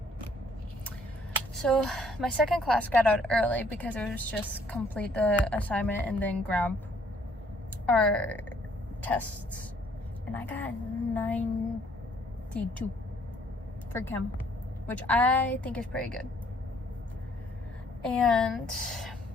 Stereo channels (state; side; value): normal; both; correlation 0.63